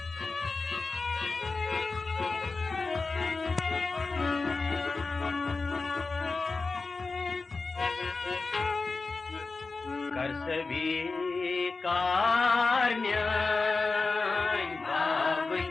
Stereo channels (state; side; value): quieter; right; 4.0 dB